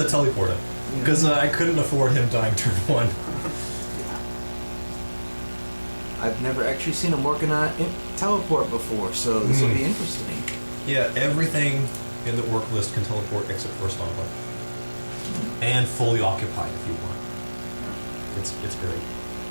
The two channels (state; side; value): inverted; both; correlation -1.00